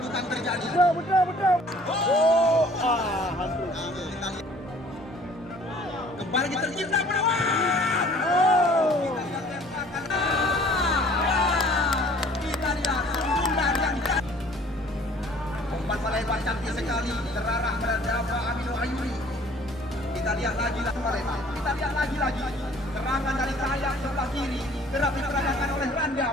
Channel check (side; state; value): both; normal; correlation 0.53